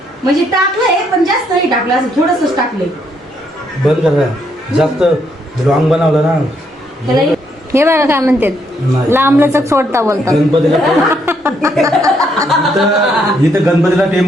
म्हणजे टाकलंय पण जास्त नाही टाकलं, असं थोडंसंच टाकलंय. बंद करा, जास्त रॉंग बनवलं ना. हे बघा काय म्हणतात, नाही. लांबलचक सोडता बोलतात. गणपतीला इथं गणपतीला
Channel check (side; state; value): both; normal; correlation 0.73